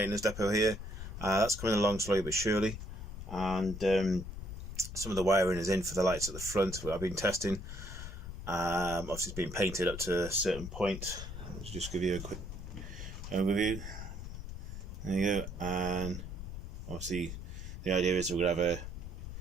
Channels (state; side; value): noise; left; rumble, 8 dB below the sound